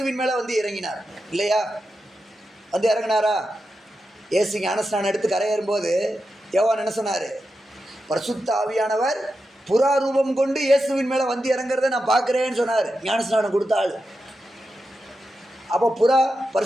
மேலே வந்து இறங்கினார் இல்லையா? வந்து இறங்கினாரா? இயேசு ஞானஸ்நானம் எடுத்து கரையேறும்போது யோவான் என்ன சொன்னார், பரிசுத்த ஆவியானவர் புறா ரூபம் கொண்டு இயேசுவின் மேலே வந்து இறங்குறத நான் பார்க்குறேன்னு சொன்னார் ஞானஸ்நானம் கொடுத்தாள். அப்போ புறா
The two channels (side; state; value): both; normal; correlation 0.89